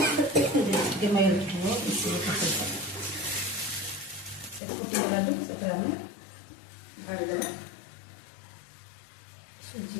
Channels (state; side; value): drops out; right; at 4.6 s